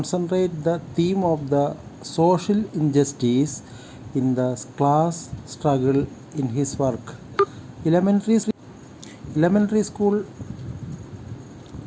the theme of the social injustice in the class struggle in his work. Elementary school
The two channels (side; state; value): both; identical; correlation 1.00